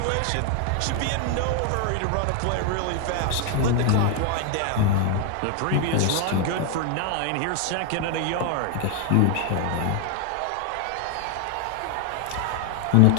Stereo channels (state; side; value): different; both; correlation 0.01